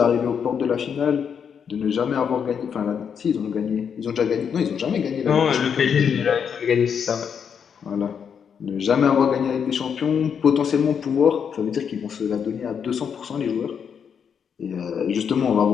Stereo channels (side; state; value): right; quieter; 7.2 dB